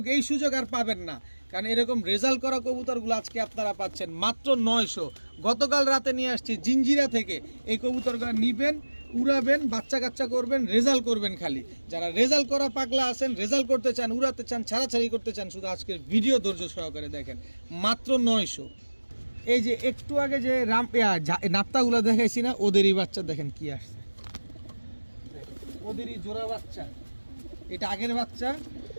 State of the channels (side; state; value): both; inverted; correlation -1.00